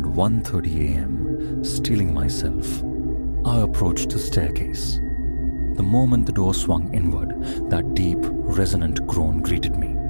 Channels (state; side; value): inverted; both; correlation -1.00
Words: 1:30 a.m., steeling myself, I approached the staircase. The moment the door swung inward, that deep, resonant groan greeted me.